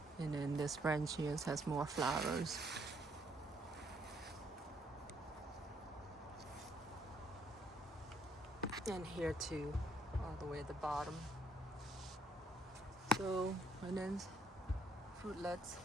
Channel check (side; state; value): both; normal; correlation 0.69